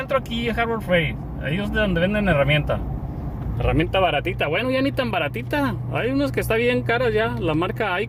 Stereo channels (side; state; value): both; identical; correlation 1.00